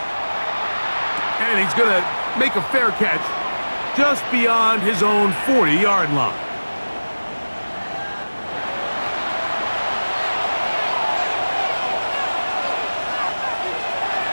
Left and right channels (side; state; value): both; inverted; correlation -1.00